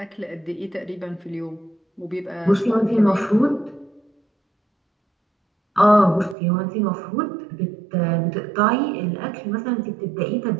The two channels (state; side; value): drops out; left; at 6.4 s